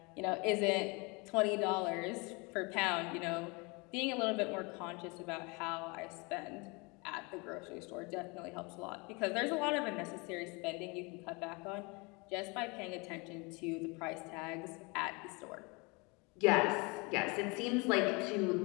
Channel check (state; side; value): quieter; right; 28.4 dB